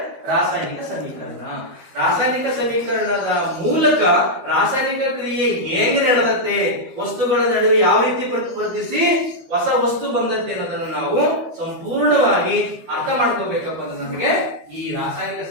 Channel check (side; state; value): left; late; 12 ms